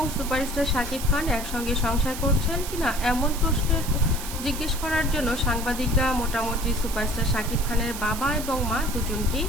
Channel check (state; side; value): noise; right; hiss, 9 dB below the sound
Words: সুপারস্টার শাকিব খান একসঙ্গে সংসার করছেন কিনা এমন প্রশ্নের জিজ্ঞেস করার জন্য সাংবাদিকরা মোটামুটি সুপারস্টার শাকিব খানের বাবা এবং মা দুজনকেই